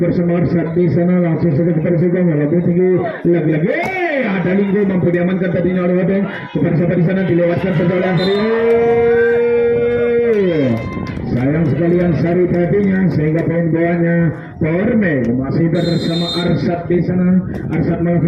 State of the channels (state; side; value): identical; both; correlation 1.00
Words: Arsad di sana, langsung saja kepada Sugeng lebih tinggi lagi-lagi. Ada Linggo mampu diamankan tadinya oleh Odeng kepada siapa di sana, dilewatkan saja oleh Ansari. Sayang sekali Ansari tadinya sehingga poin bawahnya Porme masih bersama Arsad di sana. Arsad